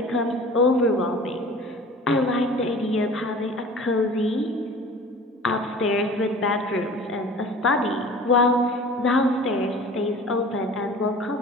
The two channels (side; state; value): both; normal; correlation 0.43